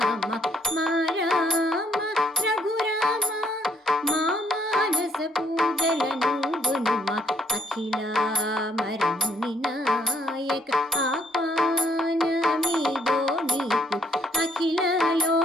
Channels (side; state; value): both; normal; correlation 0.68